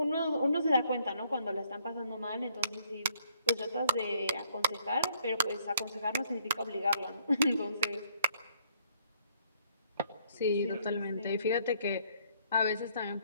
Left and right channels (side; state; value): both; inverted; correlation -0.66